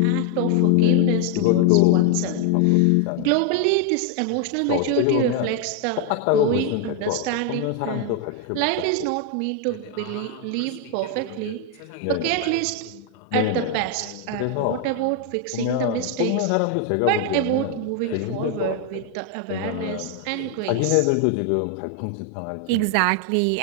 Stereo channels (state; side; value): different; both; correlation 0.01